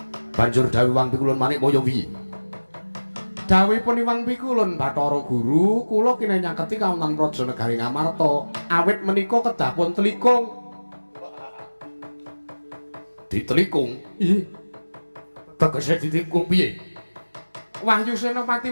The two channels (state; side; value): inverted; both; correlation -1.00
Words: Banjur dawuh Wang Pikulun Manikmaya piye? Dawuhipun Wang Pikulun Bathara Guru, kula kene nyaketi kawonten Praja Negari Ngamarta. Awit menika kedah pun telikung. Ditelikung? Iya. Tegese ditelikung piye? Wahyu Senopati